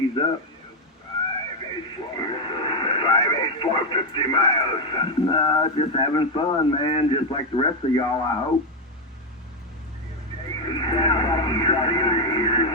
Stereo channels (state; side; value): normal; both; correlation 0.05